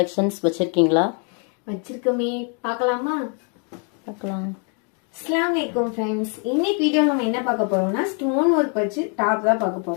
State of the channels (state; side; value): quieter; right; 39.4 dB